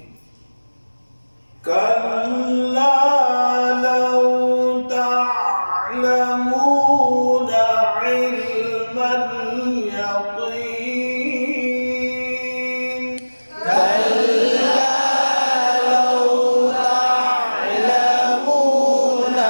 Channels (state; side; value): inverted; both; correlation -1.00